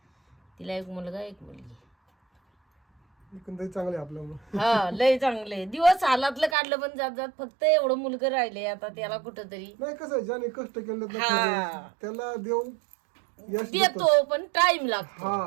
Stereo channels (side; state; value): left; drops out; at 6.6 s